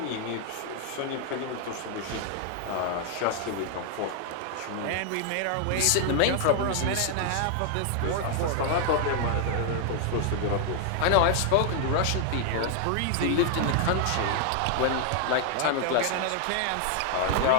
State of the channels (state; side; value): different; both; correlation 0.00